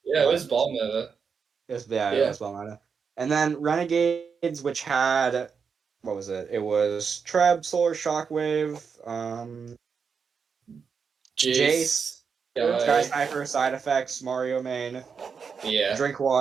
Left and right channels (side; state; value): left; quieter; 6.0 dB